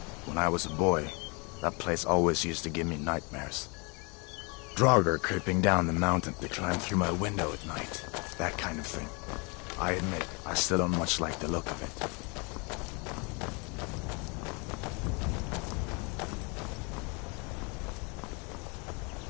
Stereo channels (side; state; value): right; quieter; 31.2 dB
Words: When I was a boy, that place always used to give me nightmares. Draugr creeping down the mountain to climb through my window at night. That kind of thing. I admit, I still don't much like the look of it.